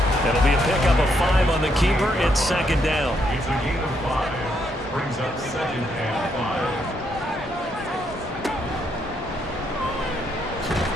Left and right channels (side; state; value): both; normal; correlation 0.75